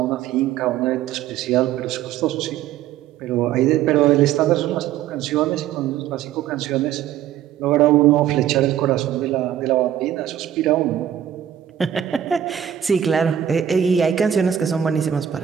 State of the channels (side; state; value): left; quieter; 10.3 dB